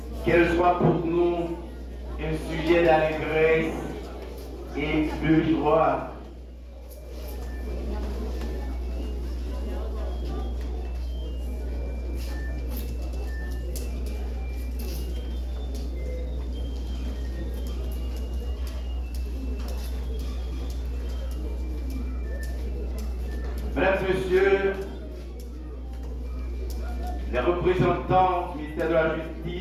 Qu'elle soit pour nous un sujet d'allégresse et de joie. Mesdames et messieurs, les représentants du ministère de la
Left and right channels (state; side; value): identical; both; correlation 1.00